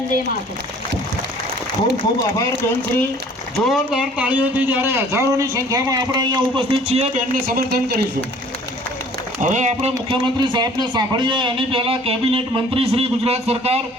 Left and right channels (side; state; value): both; normal; correlation 0.53